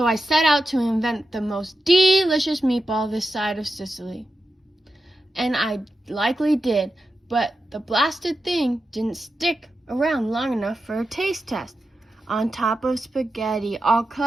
I set out to invent the most delicious meatball this side of Sicily. And I likely did, but the blasted thing didn't stick around long enough for a taste test. On top of spaghetti, all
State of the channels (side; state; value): both; normal; correlation 0.90